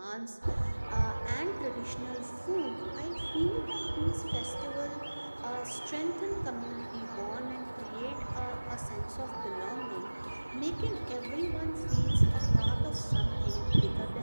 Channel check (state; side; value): inverted; both; correlation -1.00